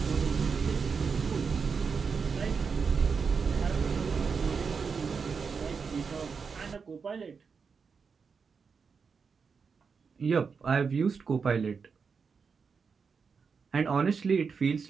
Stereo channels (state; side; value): quieter; left; 5.5 dB